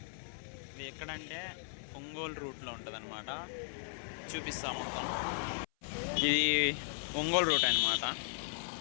ఇది ఎక్కడంటే ఒంగోలు రూట్లో ఉంటుంది అనమాట. చూపిస్తాం మొత్తం. ఇది ఒంగోలు రూట్ అనమాట.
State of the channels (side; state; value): right; silent; 53 dB below the other